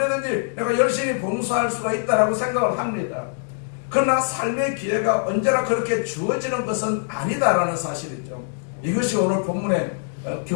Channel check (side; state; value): right; silent; digital silence